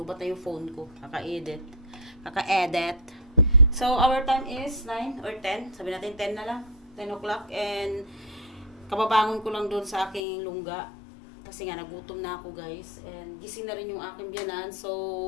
na yung phone ko. Kaka-edit. So, our time is 9 or 10. Sabi natin 10 na lang. 10 o'clock. And, kababangon ko lang doon sa aking lungga. Kasi nga, nagutom na ako guys. And, gising na rin yung aking biyanan.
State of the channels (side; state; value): right; drops out; at 10.2 s